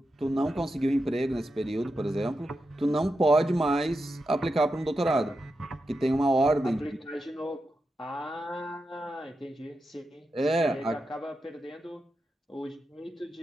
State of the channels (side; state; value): both; normal; correlation 0.88